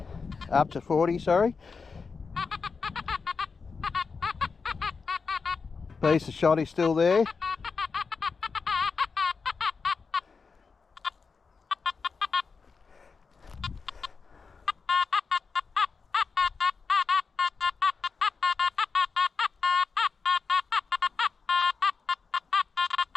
Up to 40, sorry. Piece of shotty still there.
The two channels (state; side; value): quieter; right; 5.0 dB